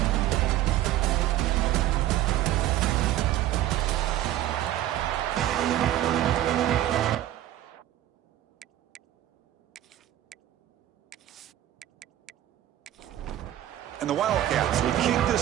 And the Wildcats will kick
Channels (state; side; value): quieter; left; 13.1 dB